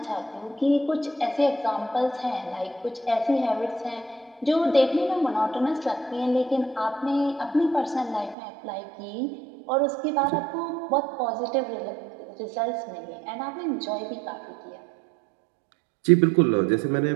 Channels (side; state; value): left; drops out; at 8.3 s